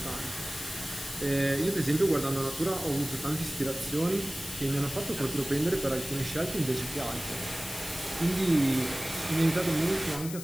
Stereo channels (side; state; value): left; noise; hiss, 10 dB below the sound